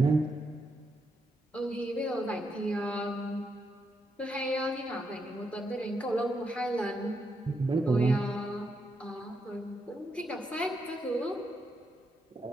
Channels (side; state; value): both; normal; correlation 0.81